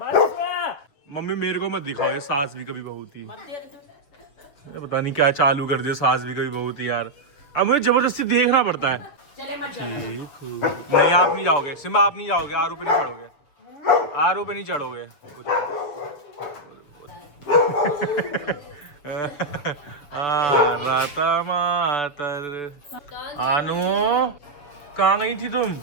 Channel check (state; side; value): late; right; 6.5 ms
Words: बस। मम्मी मेरे को मत दिखाओ ये सास भी कभी बहुत ही, पता नहीं क्या चालू कर दिया सास भी कभी बहुत ही यार। अब मुझे जबरदस्ती देखना पड़ता है। ठीक नहीं, आप नहीं जाओगे सिम्बा, आप नहीं जाओगे, आरू पे नहीं चढ़ोगे, आरू पे नहीं चढ़ोगे। राता मातर आनू कहाँ गई थी तुम?